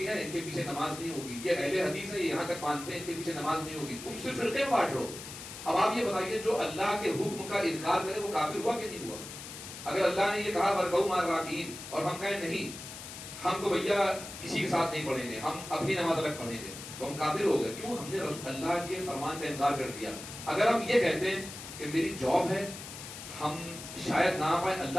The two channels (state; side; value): noise; left; hiss, 11 dB below the sound